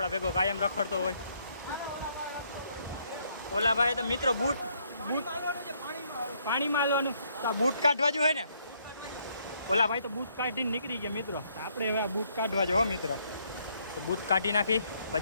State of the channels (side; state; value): both; inverted; correlation -0.70